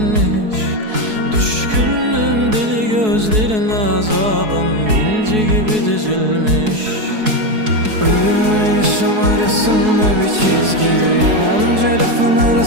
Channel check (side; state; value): left; late; 4.7 ms